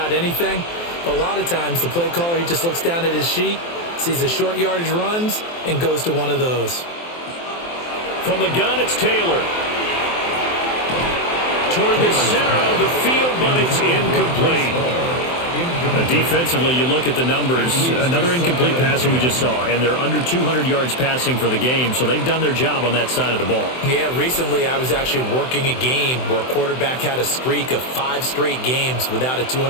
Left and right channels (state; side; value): late; right; 23 ms